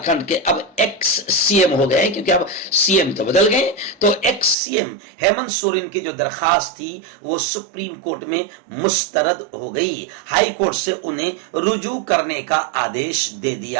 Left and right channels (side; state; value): left; drops out; at 4.5 s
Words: کے اب ایکس سی ایم ہو گئے، کیونکہ اب سی ایم تو بدل گئے، تو ex C M Hemant Soren کی جو درخواست تھی وہ سپریم کورٹ میں مسترد ہو گئی۔ ہائی کورٹ سے انہیں رجوع کرنے کا آدیش دے